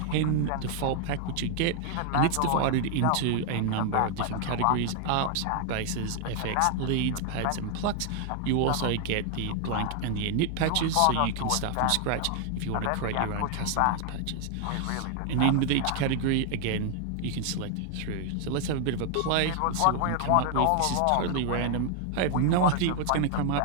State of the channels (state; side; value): different; both; correlation 0.00